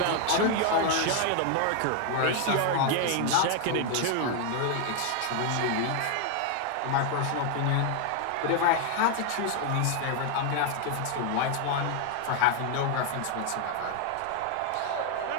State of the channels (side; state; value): both; different; correlation 0.00